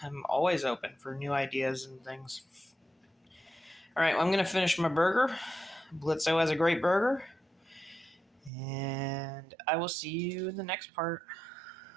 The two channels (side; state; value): left; drops out; at 8.5 s